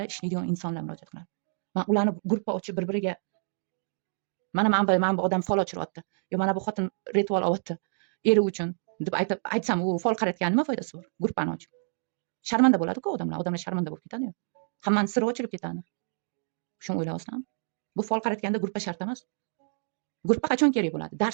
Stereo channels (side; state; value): left; silent; 59 dB below the other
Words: ishlaydigan insonlar murojaat qiladi. Men ularni guruhga ochib bir-biriga mana bu odam fol ochiryapti. Yo mana bu xotin ritual olyapti. Eri uchun deb aytsam, u fol qaratgan nima foydasi bor? Guruhni ochib. Sharmanda bo'ladi-ku odamlar sharmanda bo'lib ketadi-yu. Hammaning siri ochilib ketadi. Shuni o'ylayapsizlarmi? Bu fol qaratganda guruhga shart emas. Guruhga qachon kerak bo'ladi?